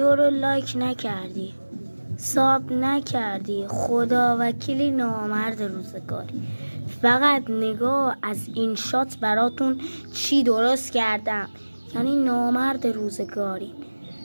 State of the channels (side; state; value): both; inverted; correlation -1.00